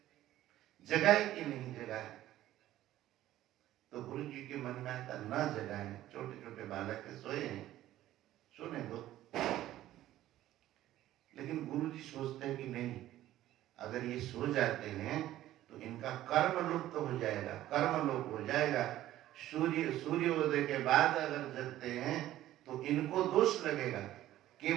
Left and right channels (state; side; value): quieter; left; 13.9 dB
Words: जगह है कि नहीं जगह है। तो गुरु जी के मन में आता न जगह है, छोटे छोटे बालक के सोए हैं, सोने दो। लेकिन गुरु जी सोचते हैं कि नहीं, अगर ये सो जाते हैं तो इनका कर्म लुप्त हो जाएगा, कर्म लोप हो जाएगा। सूर्योदय के बाद अगर जगते हैं तो इनको दोष लगेगा,